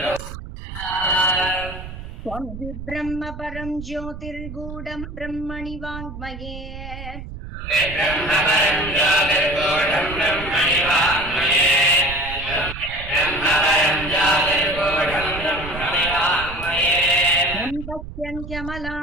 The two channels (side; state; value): right; noise; rumble, 11 dB below the sound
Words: त्वं हि ब्रह्म परं ज्योतिर्गूढं ब्रह्मणि वाङ्मये